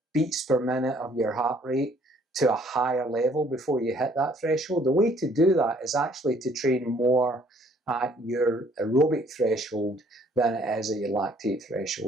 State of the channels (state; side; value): normal; both; correlation 0.61